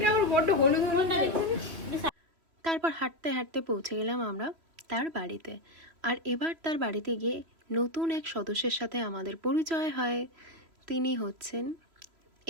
আমার বড্ড হলুদ হলুদ লাগছে। তারপর হাঁটতে হাঁটতে পৌঁছে গেলাম আমরা তার বাড়িতে। আর এবার তার বাড়িতে গিয়ে নতুন এক সদস্যের সাথে আমাদের পরিচয় হয়। তিনি হচ্ছেন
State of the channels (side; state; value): left; late; 3.0 ms